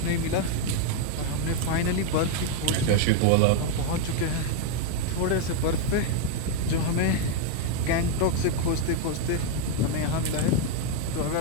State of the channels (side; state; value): both; different; correlation 0.01